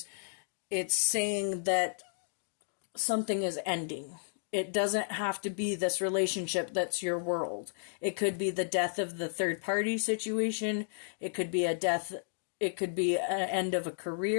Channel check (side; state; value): right; silent; digital silence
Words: it's saying that something is ending. It doesn't have to be this relationship that's your world. It could be the death of the third party situation. It could be a death. It could be an end of a